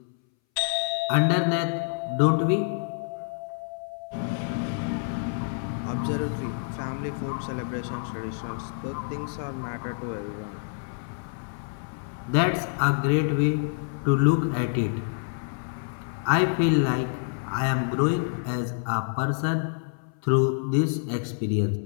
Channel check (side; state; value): right; silent; 60 dB below the other